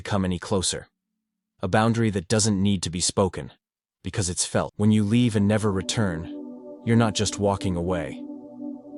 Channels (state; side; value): identical; both; correlation 1.00